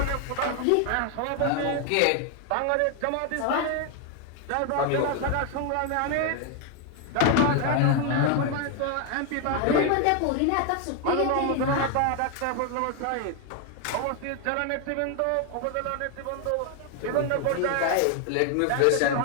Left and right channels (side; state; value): both; different; correlation 0.01